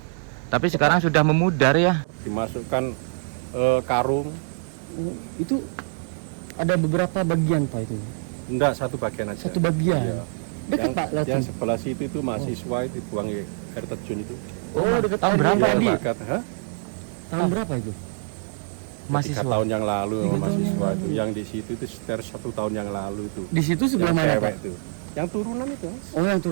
Tapi sekarang sudah memudar ya. Dimasukkan karung. Itu ada beberapa bagian Pak itu. Enggak, satu bagian aja. Satu bagian. Iya. Dekat Pak Yang langsung. sebelah situ itu mahasiswa itu buang air terjun itu. Oh, dekat tahun berapa tadi. Dekat, Tahun berapa itu? 3 tahun yang lalu 3 tahun mahasiswa yang itu. lalu. Yang di situ itu sekitar 1 tahun yang lalu itu. Di situ sebelah Yang mana cewek Pak? itu. Yang turunan itu. Mas. Oh, yang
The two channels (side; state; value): left; silent; digital silence